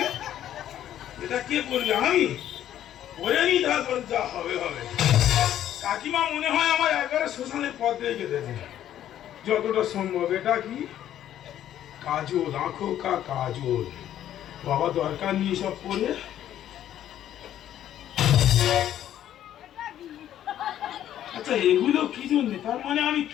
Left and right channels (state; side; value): quieter; right; 11.4 dB